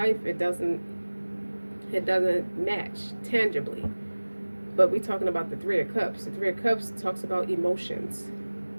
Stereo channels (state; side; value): inverted; both; correlation -1.00